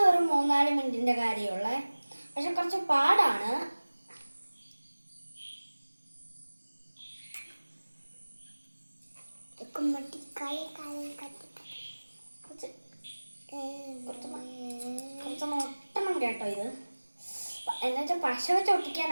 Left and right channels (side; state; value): both; inverted; correlation -1.00